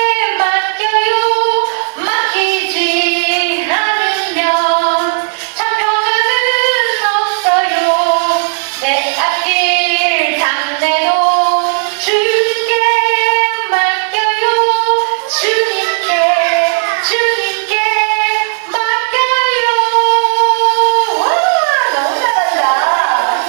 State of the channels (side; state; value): left; silent; digital silence